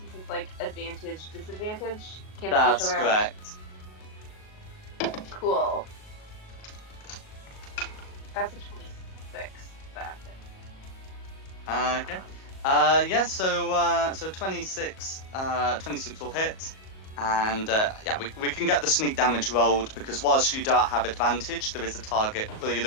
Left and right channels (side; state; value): right; late; 37 ms